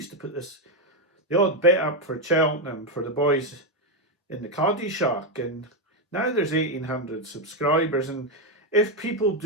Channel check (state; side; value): normal; both; correlation 0.05